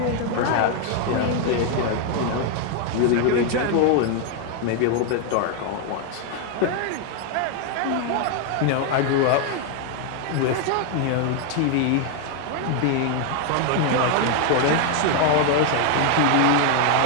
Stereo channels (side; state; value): both; different; correlation 0.00